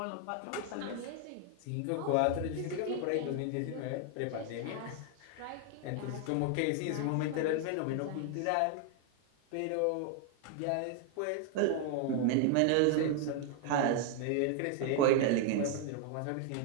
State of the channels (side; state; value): both; different; correlation 0.00